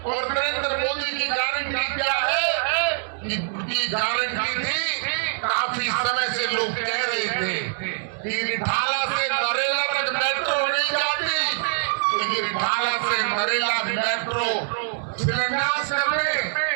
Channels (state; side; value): silent; left; digital silence